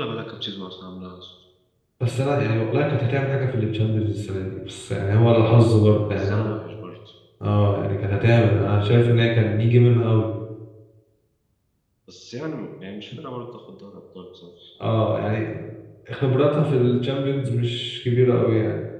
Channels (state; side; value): identical; both; correlation 1.00